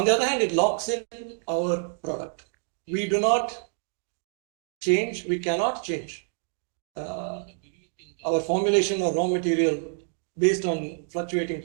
the other hand, it locks in our product. We do not change, we cannot change our formulation or raw material based on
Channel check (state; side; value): silent; left; 60 dB below the other